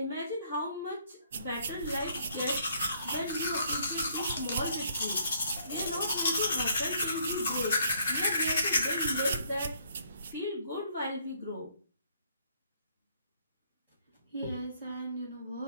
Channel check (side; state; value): both; inverted; correlation -0.65